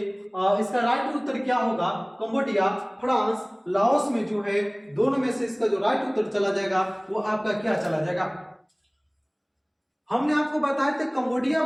इसका राइट उत्तर क्या होगा? कंबोडिया, फ्रांस, लाओस में जो है दोनों में से इसका जो राइट उत्तर चला जाएगा वो आपका क्या चला जाएगा? हमने आपको बताया था कंबोडिया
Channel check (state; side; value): identical; both; correlation 1.00